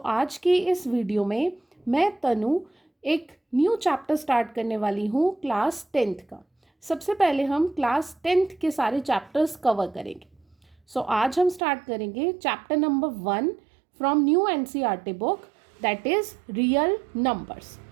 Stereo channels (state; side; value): drops out; left; at 11.6 s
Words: आज की इस वीडियो में मैं तनु एक न्यू चैप्टर स्टार्ट करने वाली हूँ क्लास 10th का। सबसे पहले हम क्लास 10th के सारे चैप्टर्स कवर करेंगे। आज हम स्टार्ट करेंगे chapter number 1 from new NCERT book, that is real numbers.